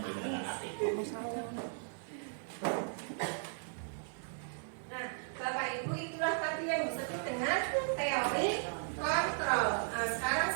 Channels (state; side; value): silent; left; digital silence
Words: dengan hati. Nah, Bapak Ibu itulah tadi yang disebut dengan teori kontrol. Nah, sekarang